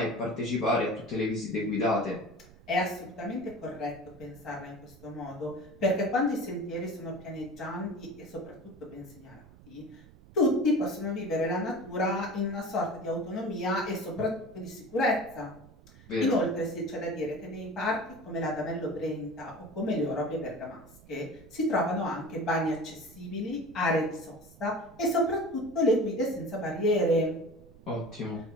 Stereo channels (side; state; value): right; noise; rumble, 22 dB below the sound